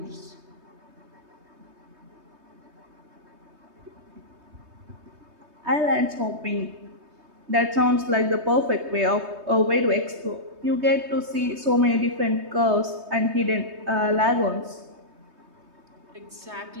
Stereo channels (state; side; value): late; left; 3.2 ms